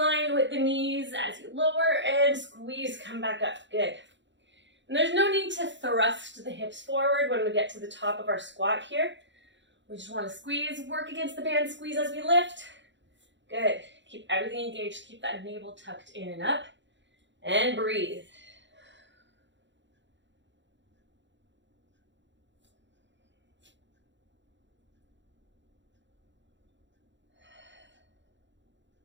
with the knees as you lower and squeeze, come back up. Good. And there's no need to thrust the hips forward when we get to the top of our squat here. We just want to squeeze, work against the band, squeeze as we lift. Good. Keep everything engaged. Keep that navel tucked in and up. And breathe.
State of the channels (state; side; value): late; left; 0.53 ms